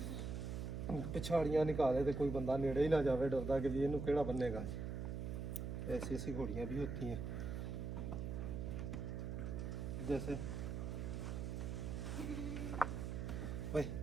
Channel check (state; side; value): noise; right; hum, 3 dB below the sound